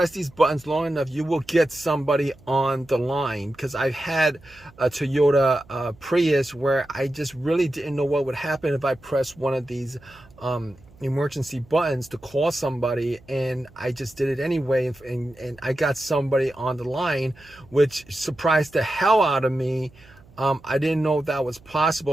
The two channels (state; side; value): noise; right; hum, 26 dB below the sound